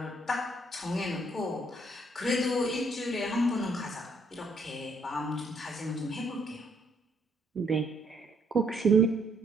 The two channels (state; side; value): normal; both; correlation 0.69